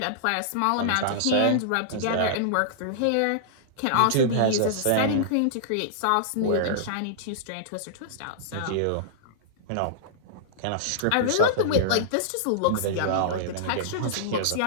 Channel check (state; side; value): different; both; correlation -0.02